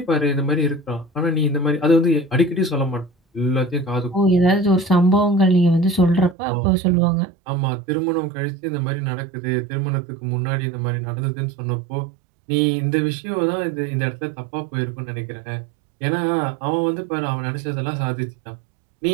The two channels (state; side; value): drops out; left; at 6.4 s